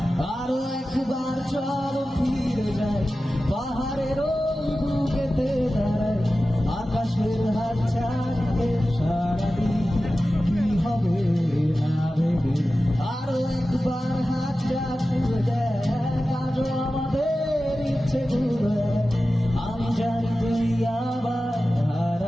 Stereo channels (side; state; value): both; normal; correlation 0.94